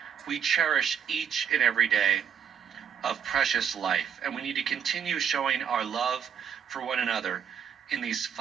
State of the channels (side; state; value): left; quieter; 8.0 dB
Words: We cherish each and every day of precious life, and we need to continue showing our love for one another in these